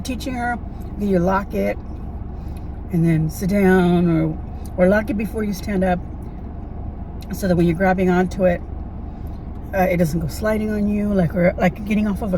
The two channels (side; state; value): both; identical; correlation 1.00